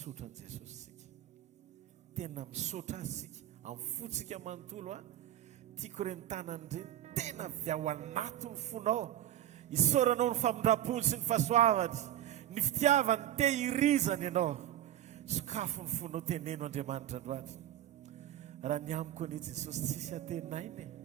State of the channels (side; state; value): left; quieter; 12.1 dB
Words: an' Jesosy sika tena misotra azy sika amin'ny fotsika manontolo tiako re mitanany reny tena avy ao anaty ny fonao isoranao ny famindram-pony sy ny fahasoavany ny fitiavany tehirizany ianao Sakafo ny fonao teneno Andriamanitra androany. Raha ny amiko anie Jesosy tsisy atenainy,